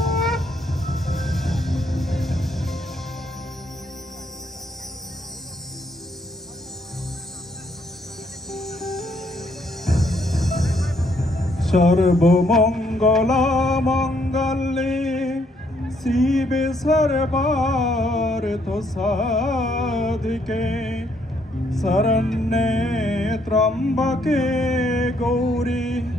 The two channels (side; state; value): both; normal; correlation 0.70